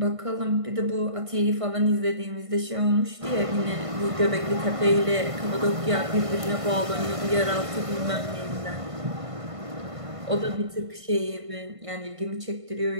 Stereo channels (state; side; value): late; left; 1.5 ms